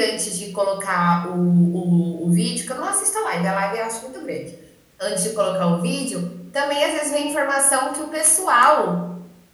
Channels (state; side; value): identical; both; correlation 1.00